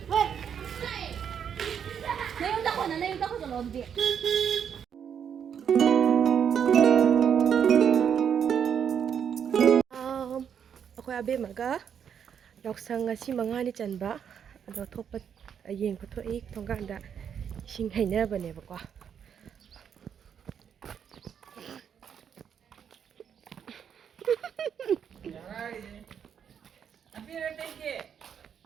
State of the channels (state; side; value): quieter; left; 8.0 dB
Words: aku abe maga Yaoshang ngasi mangani chanba ado thokpa yeng photo ik thongkanda sing hainabane ba ko